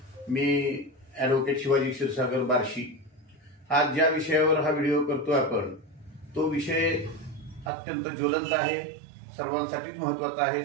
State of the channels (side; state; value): left; drops out; at 7.7 s